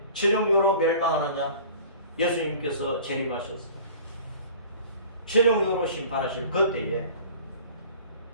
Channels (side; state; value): both; inverted; correlation -0.45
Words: 최종적으로 멸망하느냐? 예수님께서 재림하셨어요. 최종적으로 심판하실 그때에